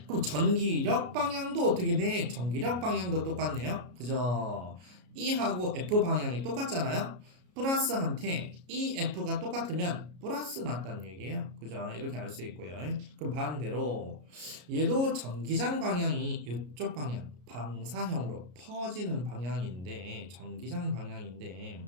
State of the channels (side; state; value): left; late; 33 ms